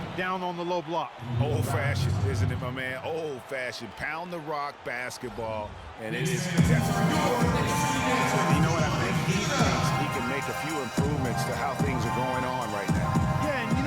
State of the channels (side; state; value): both; identical; correlation 1.00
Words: down on the low block. Old-fashioned, isn't it, my man? Old-fashioned. Pound the rock basketball, and it is definitely. You know what I think? He thinks he can make a few improvements to how things are going on right now. Yeah, and you